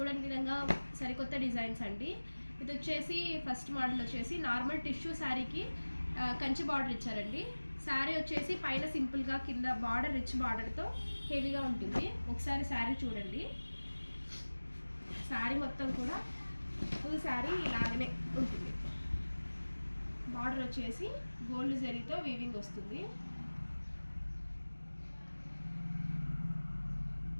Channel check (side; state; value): both; inverted; correlation -1.00